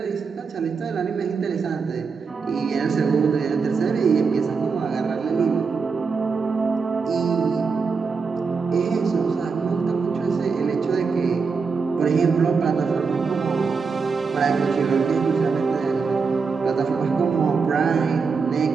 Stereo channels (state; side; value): quieter; left; 5.1 dB